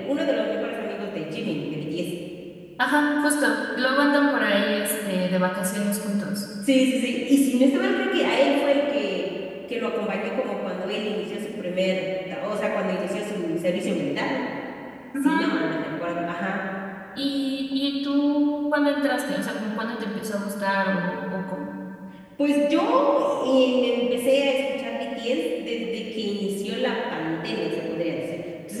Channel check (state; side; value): identical; both; correlation 1.00